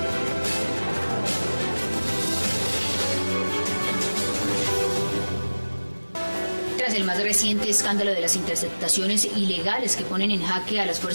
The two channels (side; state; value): both; inverted; correlation -1.00